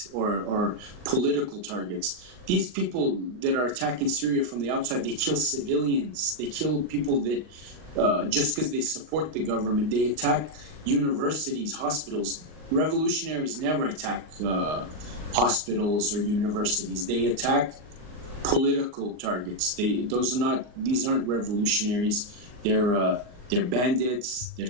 or political targets. These people that are attacking Syria from the outside, they kill civilians. They kill people that just because they support the government. They attack universities, hospitals. Revolutionaries never attack hospitals or universities. They attack political targets. These aren't revolutionaries. They're bandits, they're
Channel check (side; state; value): left; late; 39 ms